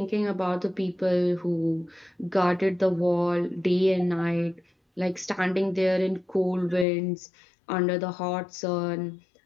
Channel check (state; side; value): drops out; right; at 6.9 s